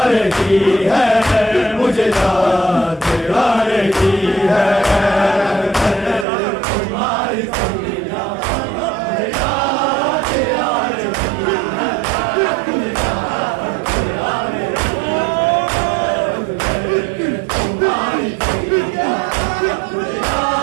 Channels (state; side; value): drops out; left; at 6.2 s